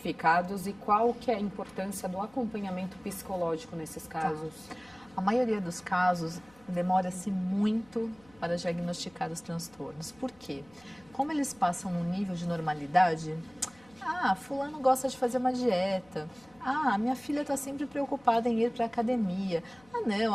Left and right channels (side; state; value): left; noise; hum, 28 dB below the sound